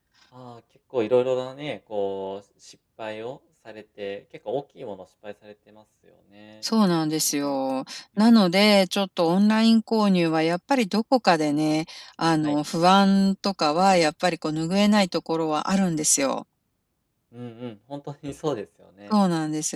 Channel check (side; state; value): both; identical; correlation 1.00